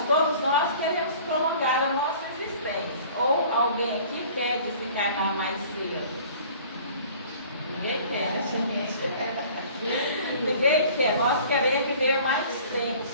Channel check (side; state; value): both; inverted; correlation -0.48